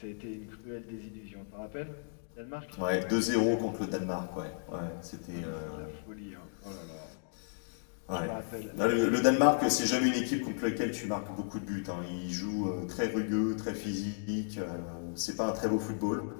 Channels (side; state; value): right; silent; digital silence